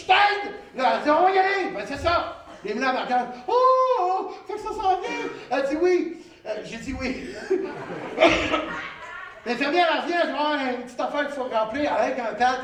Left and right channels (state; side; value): identical; both; correlation 1.00